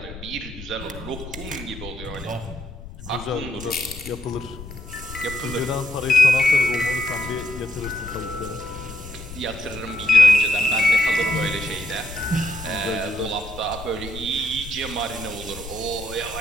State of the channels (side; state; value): left; noise; rumble, 13 dB below the sound